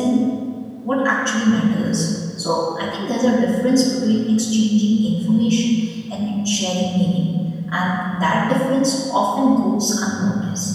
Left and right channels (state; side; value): identical; both; correlation 1.00